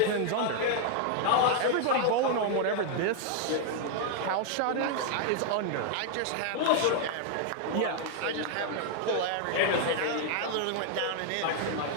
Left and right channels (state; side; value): different; both; correlation 0.00